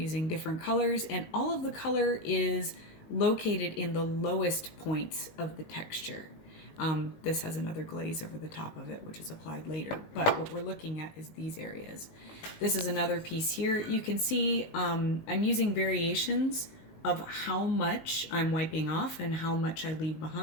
different colors, and all of the color is located in the lowest points of the texture. This has another glaze over the top of it, which is applied later. But what we're looking at is these areas. This is another piece here. You can see I'm using variations of how much I'm wiping off and how much I leave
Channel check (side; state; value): right; late; 19 ms